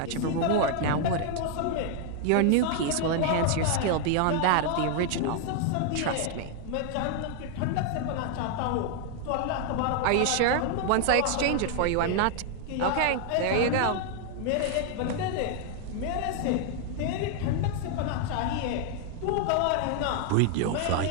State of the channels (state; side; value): different; both; correlation 0.00